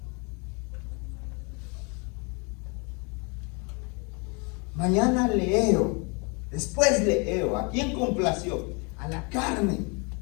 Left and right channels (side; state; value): right; quieter; 32.5 dB